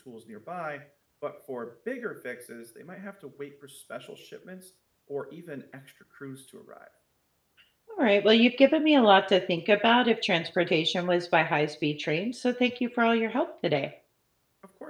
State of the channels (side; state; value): both; identical; correlation 1.00